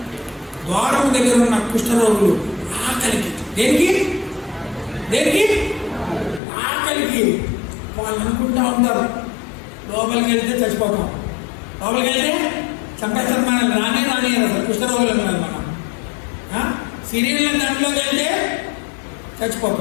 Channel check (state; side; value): drops out; right; at 6.4 s